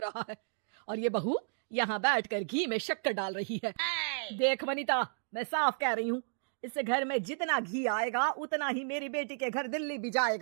है और ये बहू यहाँ बैठकर घी में शक्कर डाल रही है। देख वनिता, मैं साफ कह रही हूँ, इस घर में जितना घी आएगा उतना ही मेरी बेटी के घर दिल्ली भी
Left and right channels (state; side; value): silent; left; digital silence